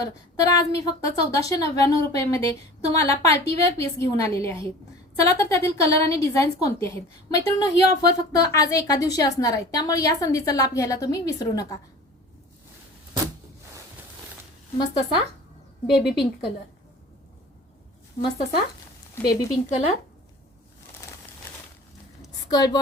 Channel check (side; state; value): both; normal; correlation 0.41